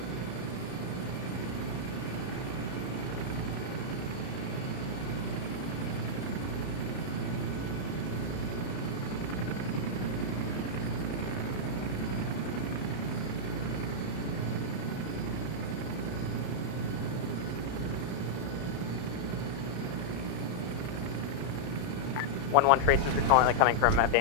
One tracers are currently coming from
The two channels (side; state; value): right; late; 32 ms